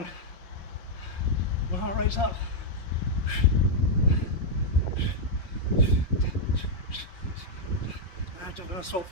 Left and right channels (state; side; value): late; right; 5.6 ms